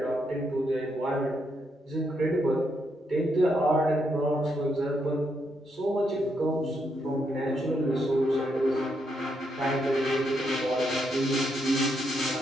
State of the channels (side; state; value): both; normal; correlation 0.78